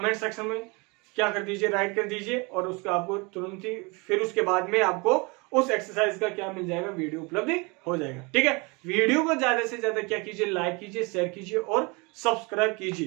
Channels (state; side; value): quieter; left; 28.4 dB